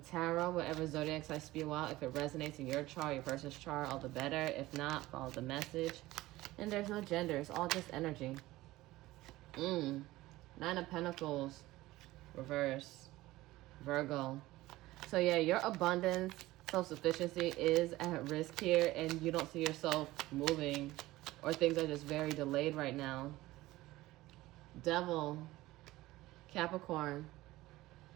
Whatever zodiacs I spew out, if it resonates in your chart, your person's chart, all the better. If not, follow the message. And there's no gender. It's all just energy. 9 of Pentacles. Reverse. Virgo. So yeah, your abundance, self-sufficiency is at risk here, and you don't see yourself moving, or things are just very delayed right now. Devil. Capricorn.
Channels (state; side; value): quieter; left; 17.7 dB